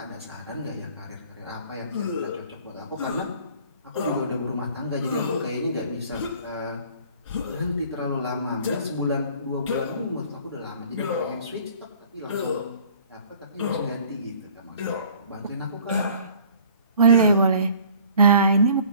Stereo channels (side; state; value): both; inverted; correlation -0.51